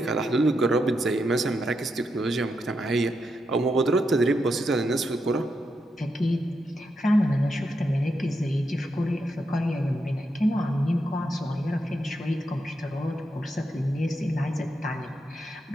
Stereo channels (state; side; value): normal; both; correlation 0.83